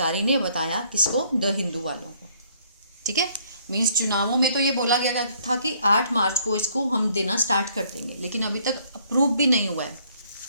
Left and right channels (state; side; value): inverted; both; correlation -0.64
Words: ने बताया किसको, द हिंदू वालों को, ठीक है। मीन्स चुनावों में तो ये बोला गया था कि 8 मार्च को इसको हम देना स्टार्ट कर देंगे, लेकिन अभी तक अप्रूव भी नहीं हुआ है।